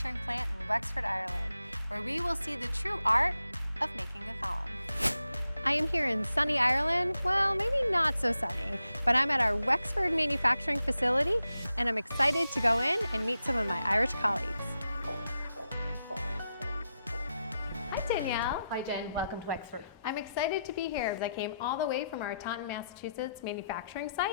plant in Wexford, Ireland, where we will see the true art of making a column. I am here in sunny Ireland. Well, maybe not so sunny, but I'm at our Wexford manufacturing facility and I'm excited to go in and meet some of my Irish colleagues. Hi Danielle. Hi Jen, welcome to Wexford. I'm excited to be here because I came all the way from our Taunton, Massachusetts manufacturing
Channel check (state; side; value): inverted; both; correlation -0.86